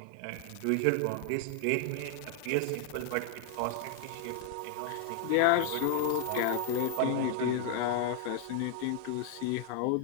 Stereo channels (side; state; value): both; different; correlation 0.00